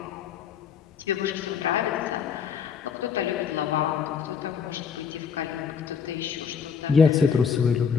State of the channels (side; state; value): right; quieter; 6.7 dB